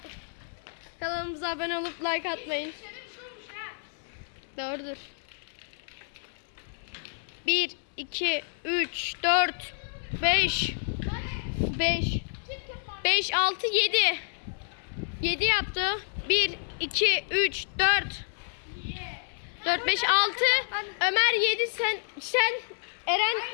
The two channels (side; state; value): right; silent; 58 dB below the other